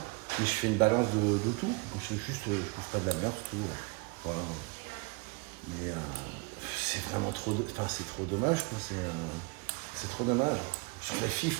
mais je fais une balance de tout. Je bouffe pas de la merde, tout. Voilà. Mais c'est vraiment trop, c'est trop dommage, quoi. C'est trop dommage. Je trouve que les filles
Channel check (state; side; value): quieter; left; 30.1 dB